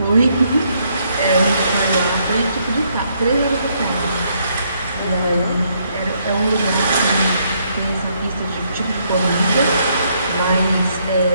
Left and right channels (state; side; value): inverted; both; correlation -0.72